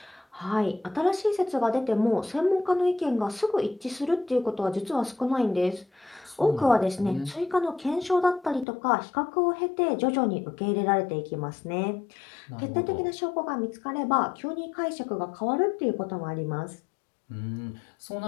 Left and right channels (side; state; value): right; drops out; at 8.7 s